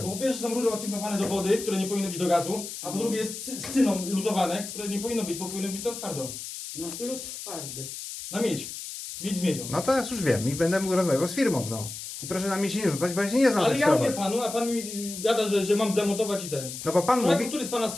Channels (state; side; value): noise; left; hiss, 9 dB below the sound